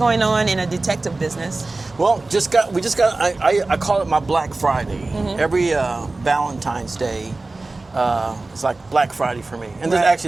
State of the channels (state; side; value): quieter; left; 3.3 dB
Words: on in a detective business. Well, I call it my Black Friday. Mm-hmm. Every Valentine's Day, it's like Black Friday for me. And